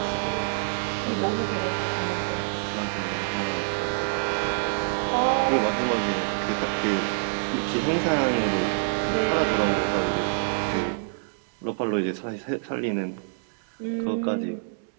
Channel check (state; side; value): silent; left; digital silence